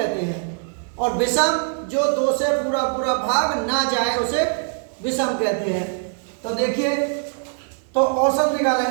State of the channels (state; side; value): silent; left; 64 dB below the other